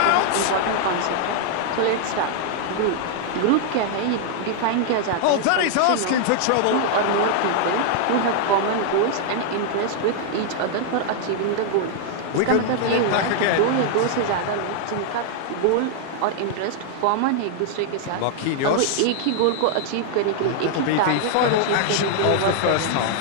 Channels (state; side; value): different; both; correlation -0.01